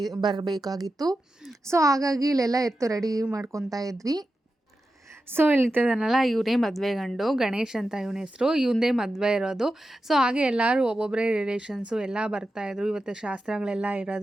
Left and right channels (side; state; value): both; normal; correlation 0.91